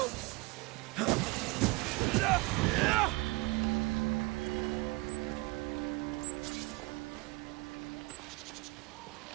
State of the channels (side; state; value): left; quieter; 24.3 dB